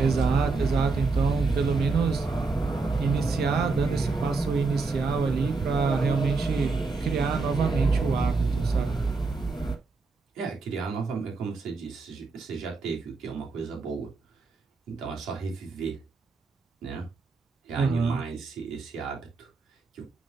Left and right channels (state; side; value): quieter; left; 4.0 dB